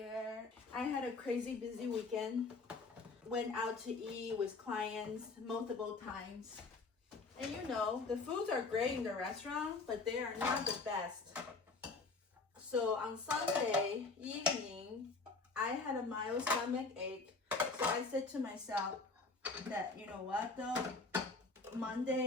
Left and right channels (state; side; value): quieter; right; 3.9 dB